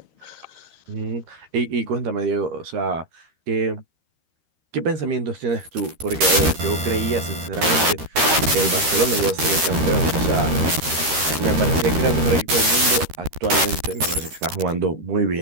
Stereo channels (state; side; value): late; left; 13 ms